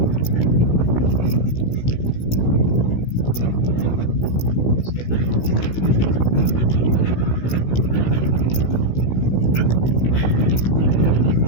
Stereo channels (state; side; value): late; right; 16 ms